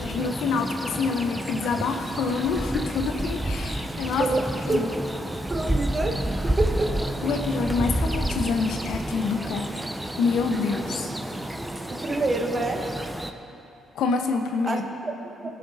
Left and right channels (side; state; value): both; normal; correlation 0.77